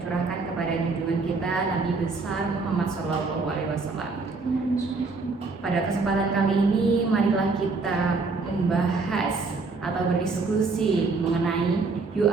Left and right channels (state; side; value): quieter; left; 4.1 dB